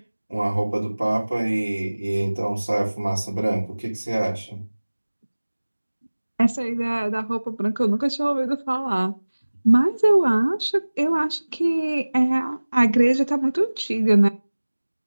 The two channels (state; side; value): inverted; both; correlation -1.00